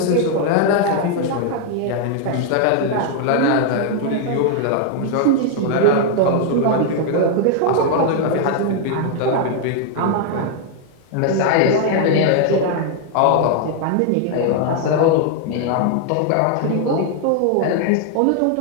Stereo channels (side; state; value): both; different; correlation 0.00